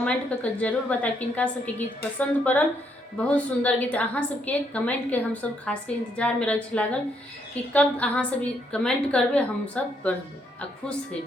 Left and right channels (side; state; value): both; normal; correlation 0.74